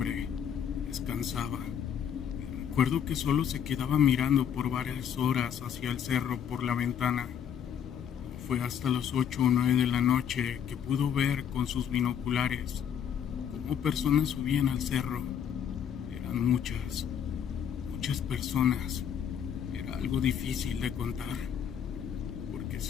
descansaba. Recuerdo que solo se quedaba mirando por varias horas hacia el cerro por la ventana. Fue hasta las 8 o 9 de la noche que pudo ver con sus binoculares cómo personas subían al cerro. Eran muchas personas. Era algo difícil de contar, porque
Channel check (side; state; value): right; quieter; 8.5 dB